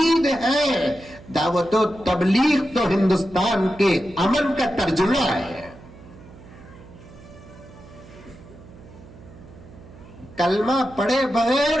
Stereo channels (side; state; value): right; noise; hum, 20 dB below the sound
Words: ہے. دعوت و تبلیغ تو ہندوستان کے امن کا ترجمہ ہے. کلمہ پڑھے